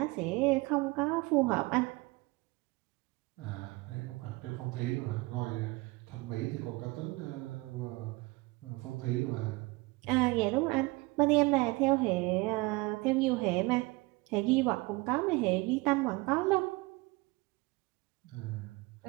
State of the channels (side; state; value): left; quieter; 23.7 dB